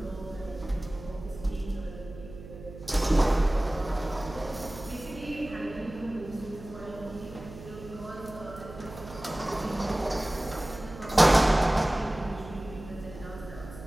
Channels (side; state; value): right; noise; hum, 14 dB below the sound